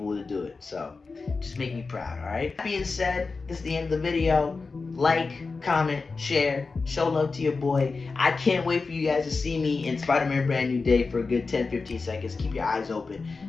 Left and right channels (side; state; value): right; quieter; 4.2 dB